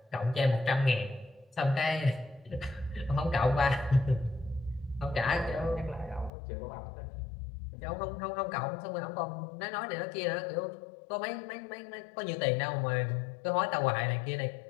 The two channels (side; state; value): right; drops out; at 6.3 s